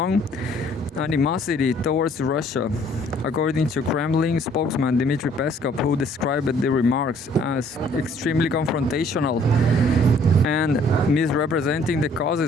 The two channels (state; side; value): normal; both; correlation 0.60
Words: animosity towards Russia, according to Kremlin spokesman Dmitry Peskov, who described the remarks as extremely confrontational and misrepresenting the